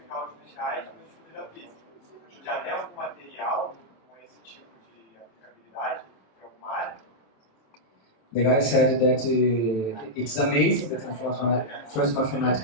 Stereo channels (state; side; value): late; right; 27 ms